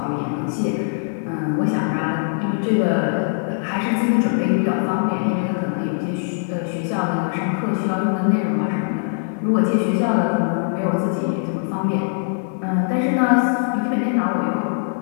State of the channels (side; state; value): right; silent; 65 dB below the other